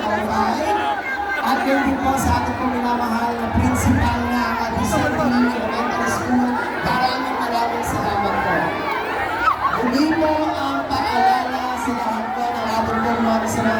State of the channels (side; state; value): both; identical; correlation 1.00